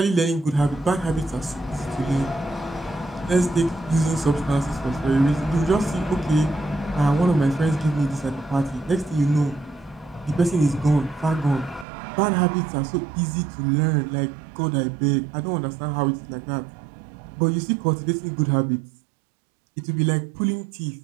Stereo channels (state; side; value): drops out; left; at 11.9 s